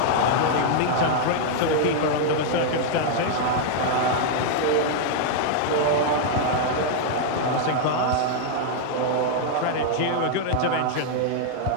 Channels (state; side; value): different; both; correlation -0.01